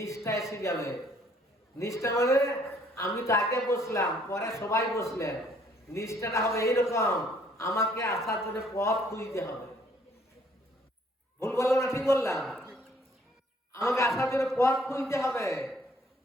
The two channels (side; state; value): both; normal; correlation 0.63